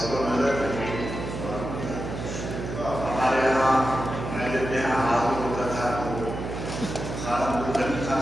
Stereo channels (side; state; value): right; noise; hum, 6 dB below the sound